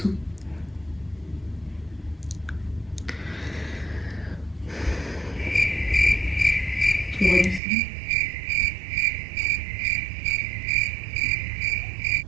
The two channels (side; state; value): left; drops out; at 7.6 s